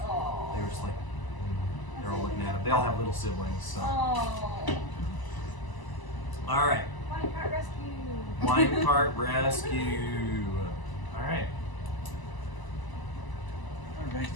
They were just like, they're all looking at him. They all have little siblings, so. Oh. All right. Wine Cart Rescue. Wine cart rescue. All right. Alright.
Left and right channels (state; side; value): late; right; 1.0 ms